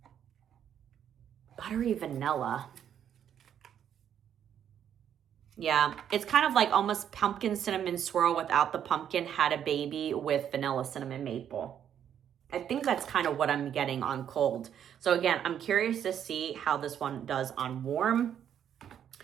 Buttery vanilla. Yeah, it's kind of like almost pumpkin cinnamon swirl without the pumpkin had a baby with vanilla cinnamon maple. I think that's kind of what I'm getting on cold. So again, I'm curious to see how this one does on warm.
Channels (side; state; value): left; quieter; 9.3 dB